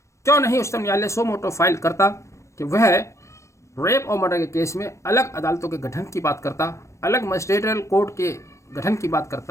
क्यों नहीं उच्चतम न्यायालय सो मोटो फाइल करता कि वह रेप और मर्डर के केस में अलग अदालतों के गठन की बात करता, अलग मजिस्ट्रेरियल कोर्ट के गठन की बात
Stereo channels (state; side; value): late; right; 0.14 ms